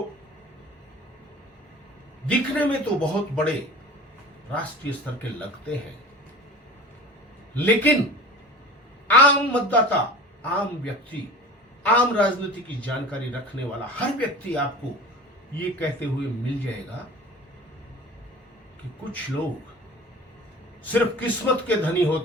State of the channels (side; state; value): both; normal; correlation 0.38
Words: दिखने में तो बहुत बड़े राष्ट्रीय स्तर के लगते हैं, लेकिन आम मतदाता, आम व्यक्ति, आम राजनीति की जानकारी रखने वाला हर व्यक्ति आपको ये कहते हुए मिल जाएगा कि कुछ लोग सिर्फ किस्मत के धनी